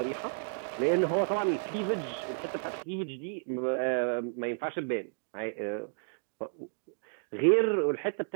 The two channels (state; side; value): silent; left; digital silence